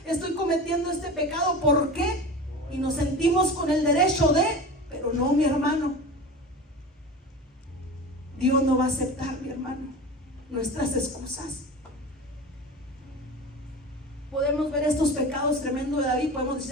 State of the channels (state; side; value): normal; both; correlation 0.32